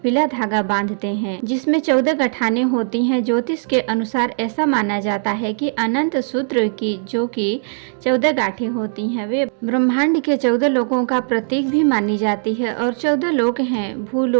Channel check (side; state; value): left; silent; digital silence